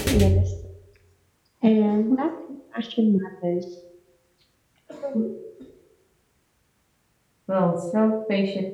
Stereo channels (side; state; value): both; identical; correlation 1.00